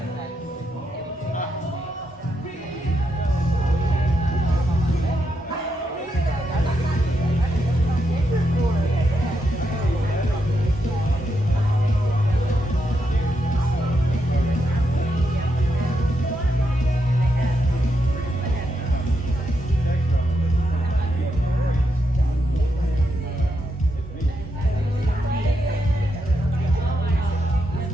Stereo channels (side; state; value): both; normal; correlation 0.82